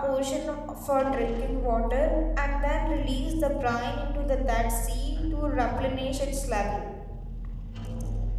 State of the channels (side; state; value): both; identical; correlation 1.00